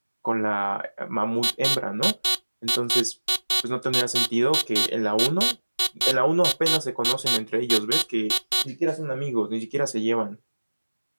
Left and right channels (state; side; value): inverted; both; correlation -1.00